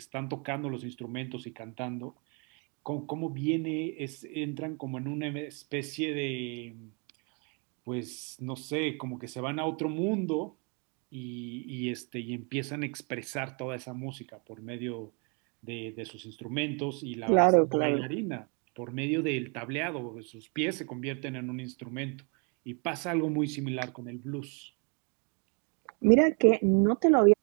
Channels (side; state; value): left; quieter; 37.1 dB